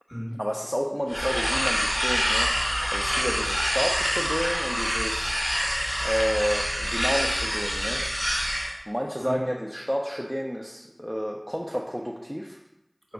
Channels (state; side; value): identical; both; correlation 1.00